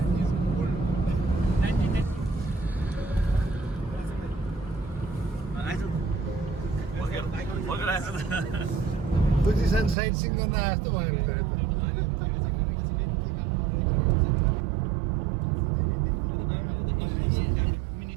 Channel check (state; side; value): drops out; left; at 10.0 s